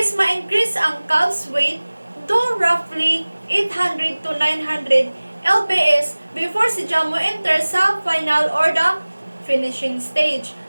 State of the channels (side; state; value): both; inverted; correlation -1.00